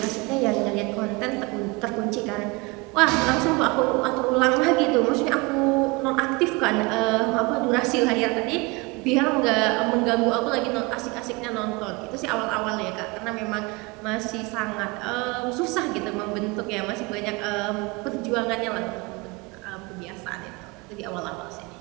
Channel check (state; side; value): quieter; left; 25.8 dB